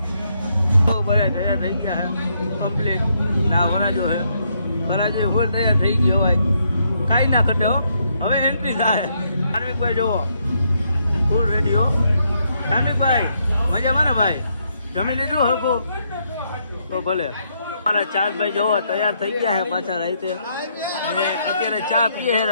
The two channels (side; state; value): both; inverted; correlation -0.75